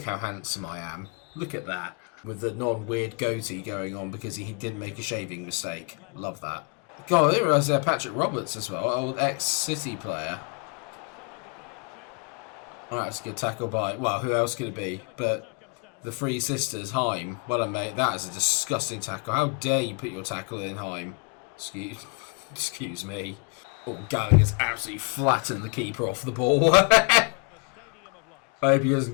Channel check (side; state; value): right; quieter; 33.4 dB